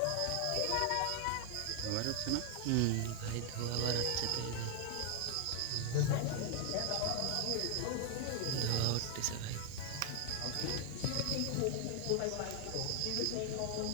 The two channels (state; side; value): different; both; correlation 0.00